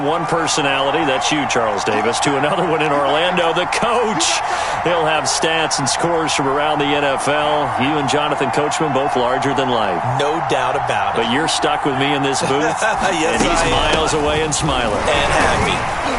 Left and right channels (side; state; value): both; identical; correlation 1.00